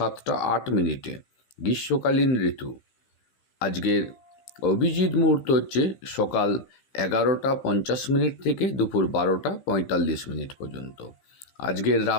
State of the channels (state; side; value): late; right; 15 ms